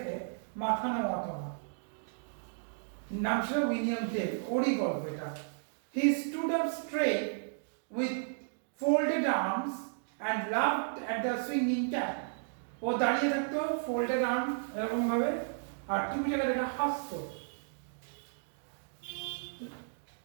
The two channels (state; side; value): silent; left; digital silence